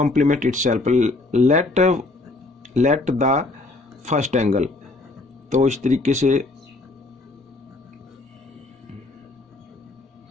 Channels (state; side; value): quieter; right; 3.1 dB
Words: itself, let the first angle. तो इस तरीके से